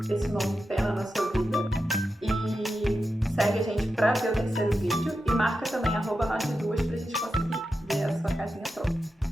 esse nome pena na sua vida. E segue a gente para ver o terceiro vídeo e marca também @nós duas pra gente conseguir ver a sua casinha pronta.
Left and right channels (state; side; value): normal; both; correlation 0.89